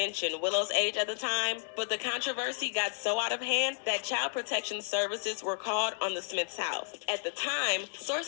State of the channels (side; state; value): right; silent; digital silence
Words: Willow's age at the time. But the controversy got so out of hand that Child Protection Services were called on the Smiths' house. At the time,